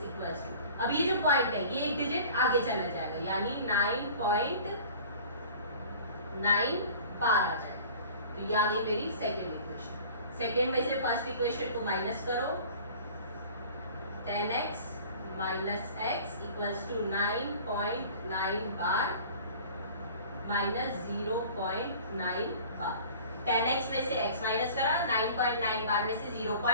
equals to, अब ये जो पॉइंट है ये एक डिजिट आगे चला जाएगा, यानी 9.9 बार आ जाएगा, तो ये आ गई मेरी सेकेंड इक्वेशन। सेकेंड में से फर्स्ट इक्वेशन को माइनस करो, 10x minus x equals to 9.9 bar minus 0.9 bar. 10x में से x माइनस करा, 9.9 बार में से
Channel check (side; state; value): both; inverted; correlation -0.44